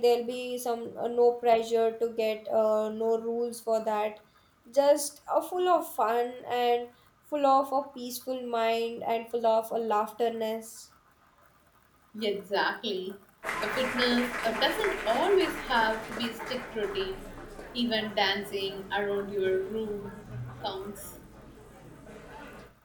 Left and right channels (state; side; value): identical; both; correlation 1.00